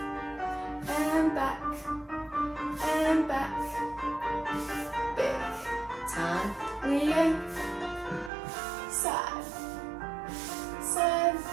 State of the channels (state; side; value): drops out; left; at 8.3 s